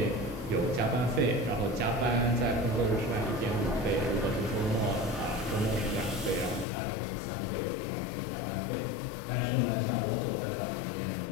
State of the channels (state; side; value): drops out; right; at 6.7 s